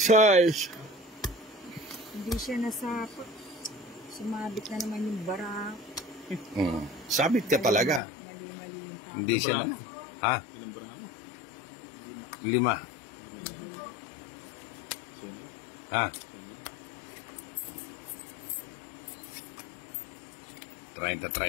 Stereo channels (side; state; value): right; drops out; at 8.0 s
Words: Size. Hindi siya nasapa. Sumabit na naman yung bara. Sabit ka talaga. Mali-mali yung tao. Hindi siya na. Ha? Ilang bara mo? 5. Ha?